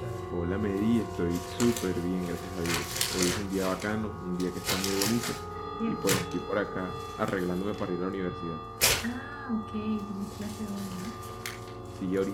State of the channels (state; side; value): identical; both; correlation 1.00